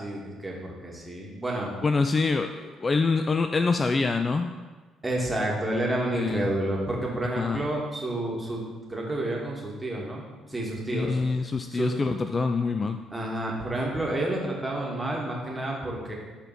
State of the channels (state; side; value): normal; both; correlation 0.84